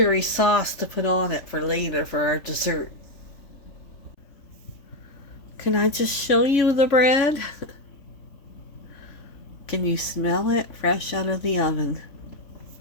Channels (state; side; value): late; right; 3.5 ms